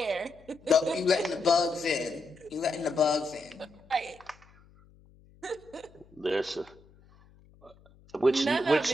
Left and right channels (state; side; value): noise; left; hum, 27 dB below the sound